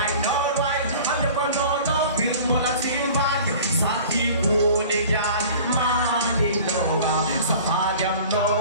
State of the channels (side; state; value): both; inverted; correlation -0.43